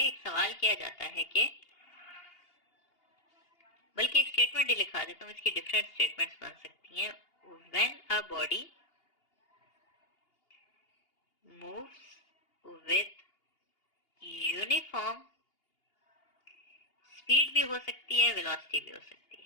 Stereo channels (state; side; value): late; right; 2.8 ms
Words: सवाल किया जाता है कि, बल्कि एक स्टेटमेंट ही लिखा देता हूँ, इसकी डिफरेंट स्टेटमेंट्स बन सकती हैं। When a body moves with uniform speed भी हो सकती है, वेलोसिटी भी हो सकती